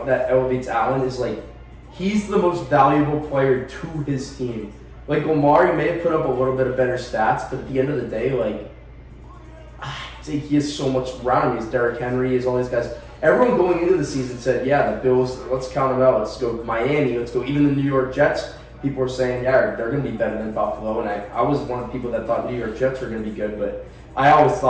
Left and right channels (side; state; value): both; identical; correlation 1.00